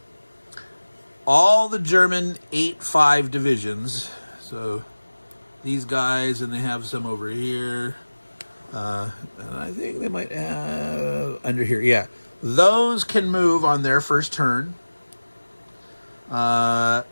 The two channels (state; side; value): inverted; both; correlation -1.00